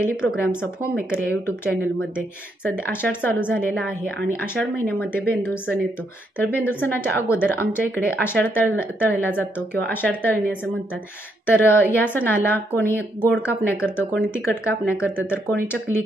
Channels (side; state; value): both; normal; correlation 0.76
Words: programs of home maker या यूट्यूब चॅनलमध्ये. सध्या आषाढ चालू झालेला आहे आणि आषाढ महिन्यामध्ये बेंदूर सण येतो. तर बेंदूर सणाच्या अगोदर आमच्या इकडे आषाढ तळला जातो किंवा आषाढ तळणी असं म्हणतात. तर या सणाला कोणी गोड कापण्या करतं, कोणी तिखट कापण्या करतं, तर कोणी चकली